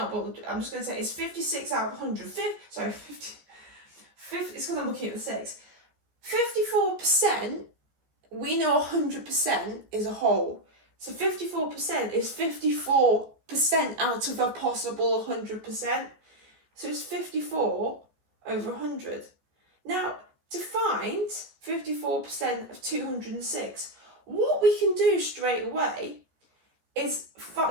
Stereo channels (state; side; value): late; left; 14 ms